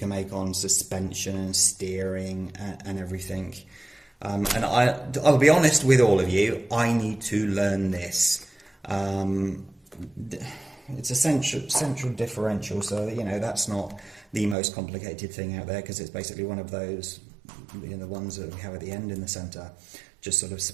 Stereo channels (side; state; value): left; drops out; at 14.6 s